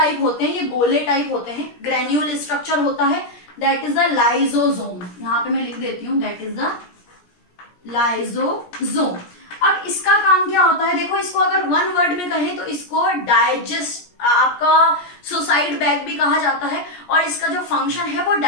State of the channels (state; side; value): late; right; 17 ms